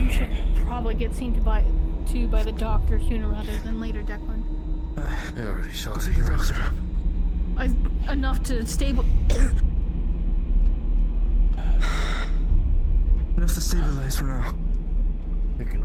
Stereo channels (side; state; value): both; identical; correlation 1.00